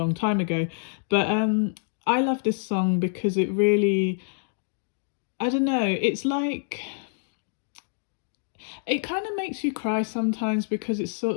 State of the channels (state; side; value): silent; right; digital silence